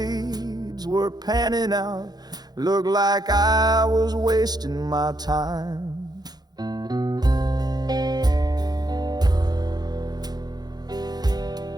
were panning out. Looked like I was wasting my time.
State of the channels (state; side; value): late; left; 0.19 ms